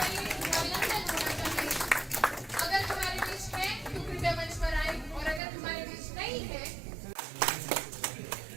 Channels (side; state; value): left; drops out; at 5.4 s